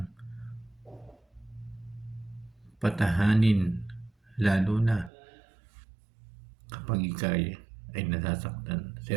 patahanin lalo na kapag ikaw ay nasasaktan.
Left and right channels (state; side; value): drops out; left; at 5.1 s